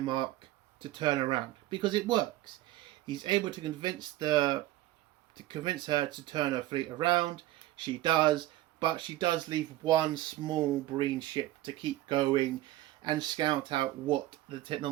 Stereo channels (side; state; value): left; quieter; 15.6 dB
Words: to turn around, because it works. He's able to convince her to turn her fleet around. She does, but she does leave one small Breen ship to keep going, and scout out what the